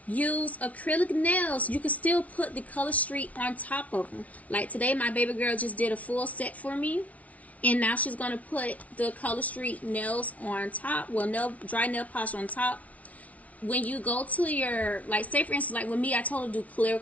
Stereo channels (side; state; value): right; late; 0.068 ms